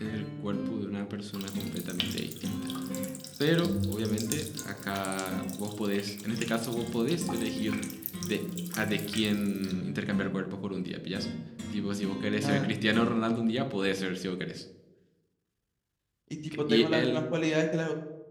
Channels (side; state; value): both; identical; correlation 1.00